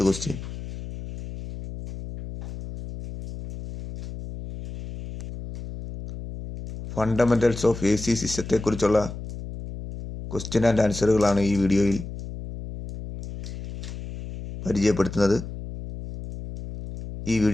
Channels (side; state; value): left; noise; hum, 10 dB below the sound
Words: ക്വസ്റ്റ്യൻ, ഫണ്ടമെൻ്റൽസ് ഓഫ് AC സിസ്റ്റത്തെക്കുറിച്ചുള്ള ക്വസ്റ്റ്യൻ ആൻഡ് ആൻസറുകളാണ് ഈ വീഡിയോയിൽ പരിചയപ്പെടുത്തുന്നത്. ഈ